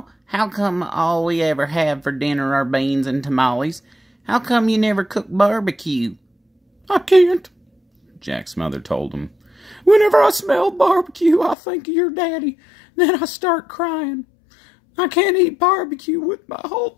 how come all we ever have for dinner are beans and tamales? How come you never cook barbecue?" "I can't," Jack's mother told him. "Whenever I smell barbecue, I think of your daddy. Then I start crying. I can't eat barbecue with my whole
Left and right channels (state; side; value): drops out; right; at 11.6 s